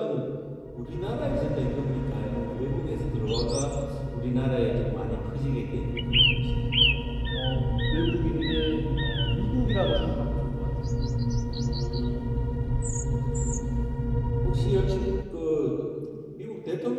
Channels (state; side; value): identical; both; correlation 1.00